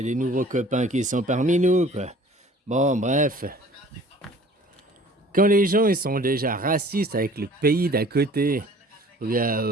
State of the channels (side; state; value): both; normal; correlation 0.50